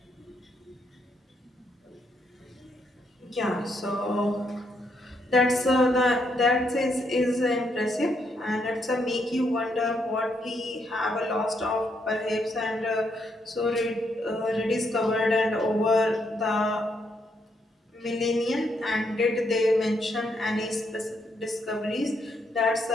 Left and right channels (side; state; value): both; normal; correlation 0.76